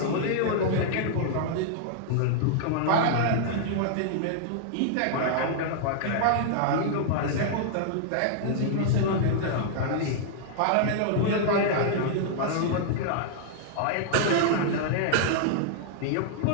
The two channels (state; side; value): different; both; correlation -0.01